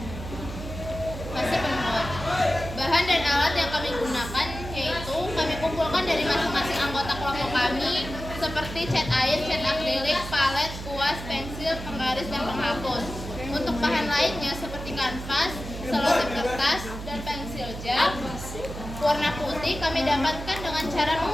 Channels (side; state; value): right; noise; hum, 9 dB below the sound